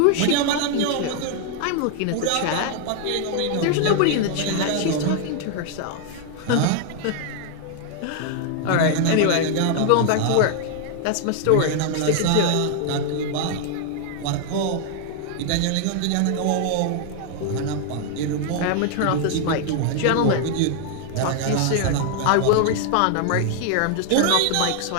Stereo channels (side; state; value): both; different; correlation 0.00